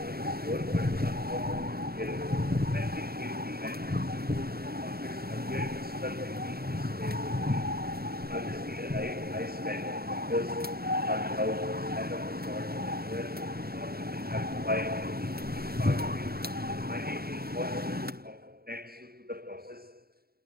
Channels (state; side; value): late; left; 0.45 ms